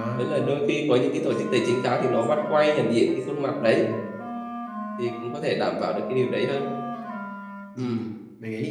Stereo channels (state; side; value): identical; both; correlation 1.00